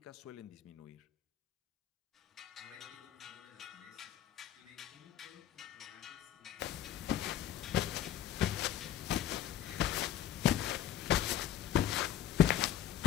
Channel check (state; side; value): quieter; right; 11.1 dB